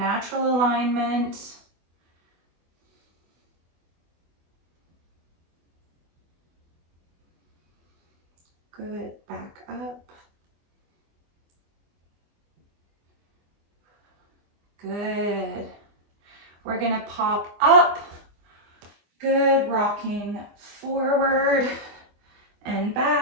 alignment. Good, back up. Good. We're gonna pop up. Good, rocking forward and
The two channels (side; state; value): left; late; 24 ms